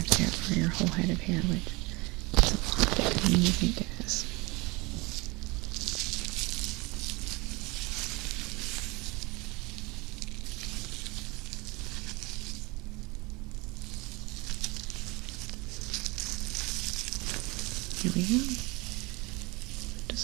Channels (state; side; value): quieter; left; 25.1 dB